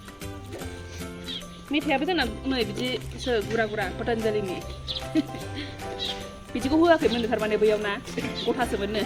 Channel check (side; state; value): both; identical; correlation 1.00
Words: मेथाइयाबो जोंना नै बिदिसो गुरा पतंजलिनि बिदिखौ होआखैमोन थारमाने बैयाव ना गथासोमोननो